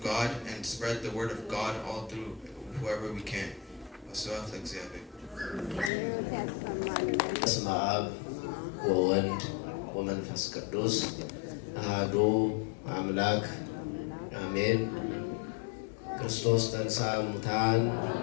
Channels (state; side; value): drops out; right; at 5.9 s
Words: God and spread the word of God all through whoever we can. በስመ አብ ወወልድ ወመንፈስ ቅዱስ አሐዱ አምላክ አሜን። ክርስቶስ ተንሥአ እሙታን